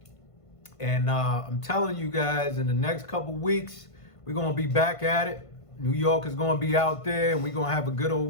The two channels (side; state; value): right; late; 1.5 ms